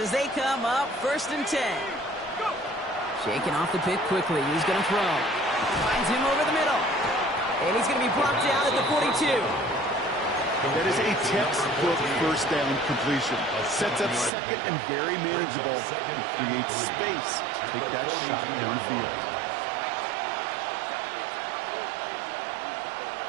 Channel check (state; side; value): drops out; left; at 14.3 s